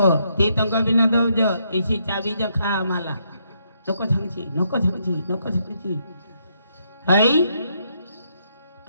ती तंग बी न दौज इशी चाबी ज खा आम्हाला नको सांगची हई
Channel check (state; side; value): inverted; both; correlation -0.76